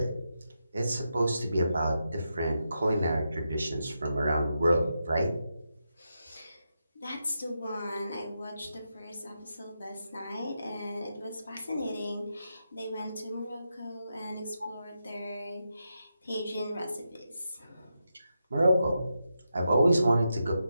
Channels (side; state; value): both; inverted; correlation -0.86